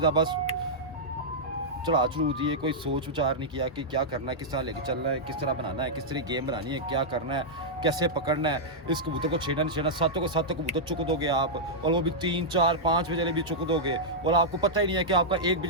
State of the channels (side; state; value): both; normal; correlation -0.08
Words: था, बस चढ़ा चढ़ू दिए। कोई सोच विचार नहीं किया कि क्या करना है, किस तरह लेके चलना है, किस तरह बनाना है, किस तरह गेम बनानी है, क्या करना है, कैसे पकड़ना है, इस कबूतर को छेड़ना नहीं छेड़ना। सातों को सातों कबूतर चुक दोगे आप, और वो भी 3 4 5 बजे भी चुक दोगे, और आपको पता ही नहीं है कि आपका 1